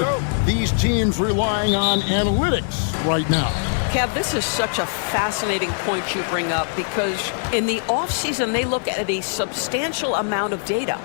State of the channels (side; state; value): right; silent; 64 dB below the other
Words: these teams relying on analytics right now? Kev, this is such a fascinating point you bring up, because in the offseason, they look at a substantial amount of data.